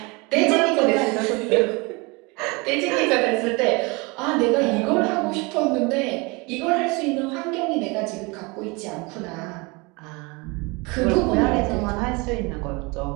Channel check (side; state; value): left; quieter; 27.2 dB